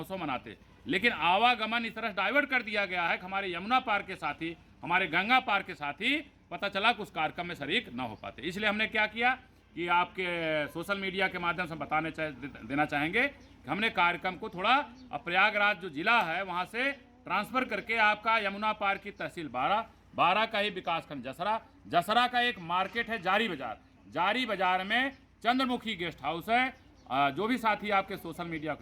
मनाते। लेकिन आवागमन इस तरह डाइवर्ट कर दिया गया है कि हमारे यमुना पार के साथ ही, हमारे गंगा पार के साथ ही पता चला कि उस कार्यक्रम में शरीक न हो पाते। इसलिए हमने क्या किया कि आपके सोशल मीडिया के माध्यम से देना चाहेंगे कि हमने कार्यक्रम को थोड़ा प्रयागराज जो जिला है वहाँ से ट्रांसफ़र करके आपका यमुना पार की तहसील बारा का ही विकासखंड जसरा का एक मार्केट है जारी बाजार में चंद्रमुखी गेस्ट हाउस है। जो भी साथी आपके सोशल मीडिया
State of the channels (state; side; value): identical; both; correlation 1.00